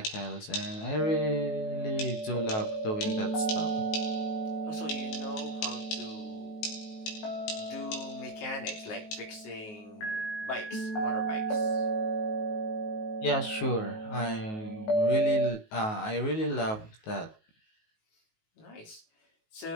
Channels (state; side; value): late; right; 19 ms